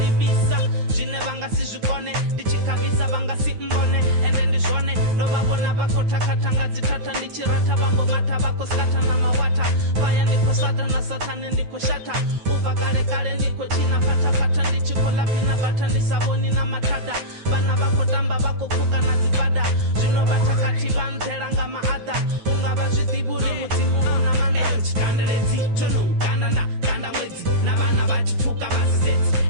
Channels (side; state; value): left; late; 9.4 ms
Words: zvine vangasizvikone ndichikavisa vangasimbone ende ndizvone ndovavona vakotakatanga dzitata ndichirata vambomata vakoskata namawata vaya ndikosata nasatane ndikoshata ubva kare kare ndikochina patapata ndichikolapina bata ndisavoni namatada vana vakotamba vakopuka nadzibada zvinovatakati vanzeranga maadha ungava zvidhiburi mudzimu una manda chikanderedzi tonoukanana kanda mwedzi navana vachipuka vasisedzi